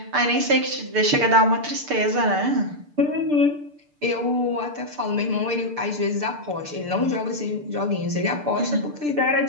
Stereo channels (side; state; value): left; late; 6.8 ms